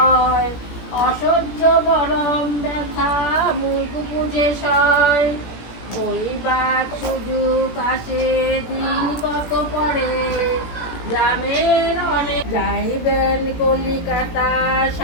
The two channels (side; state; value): right; late; 17 ms